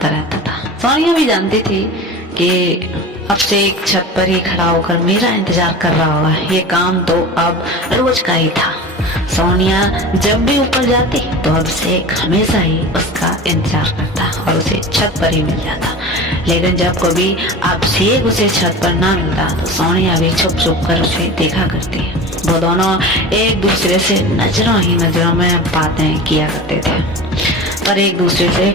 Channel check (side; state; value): both; normal; correlation 0.34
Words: रहता था। सोनिया भी जानती थी कि अब से एक छत पर ही खड़ा होकर मेरा इंतजार कर रहा होगा। ये काम तो अब रोज का ही था। सोनिया जब भी ऊपर जाती तो अभिषेक हमेशा ही उसका इंतजार करता और उसे छत पर ही मिल जाता। लेकिन जब कभी अभिषेक उसे छत पर ना मिलता तो सोनिया भी छुप छुप कर उसे देखा करती। वो दोनों एक दूसरे से नजरों ही नजरों में बातें किया करते थे, पर एक दूसरे से